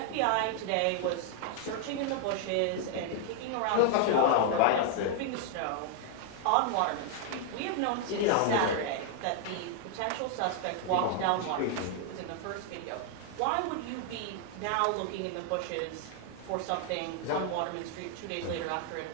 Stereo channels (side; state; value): both; different; correlation 0.00